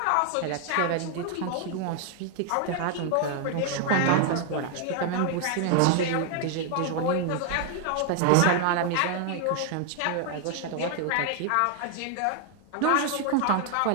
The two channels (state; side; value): different; both; correlation 0.00